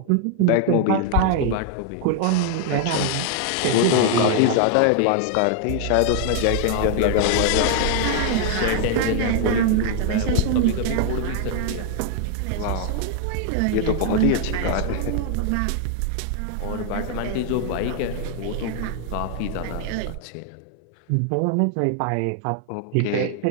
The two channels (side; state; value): both; different; correlation 0.00